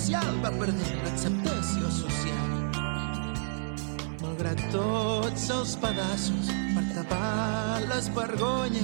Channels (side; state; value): left; silent; digital silence